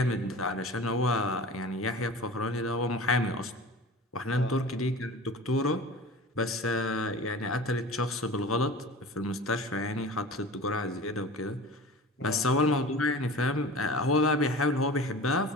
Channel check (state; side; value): normal; both; correlation 0.37